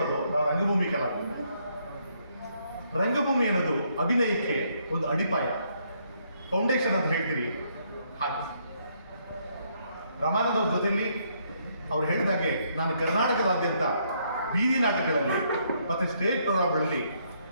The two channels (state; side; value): inverted; both; correlation -0.72